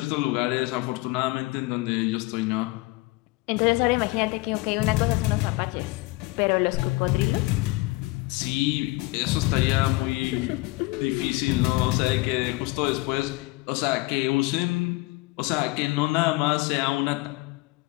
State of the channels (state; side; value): quieter; right; 22.2 dB